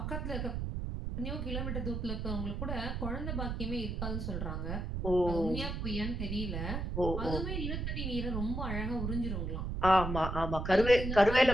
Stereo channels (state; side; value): noise; right; rumble, 3 dB below the sound